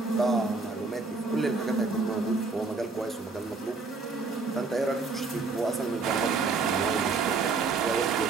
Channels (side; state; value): left; quieter; 4.2 dB